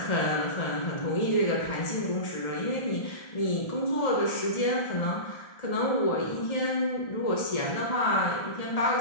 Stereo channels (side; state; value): right; late; 1.3 ms